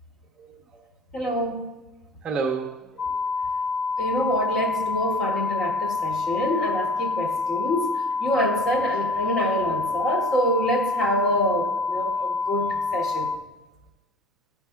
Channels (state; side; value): normal; both; correlation 0.44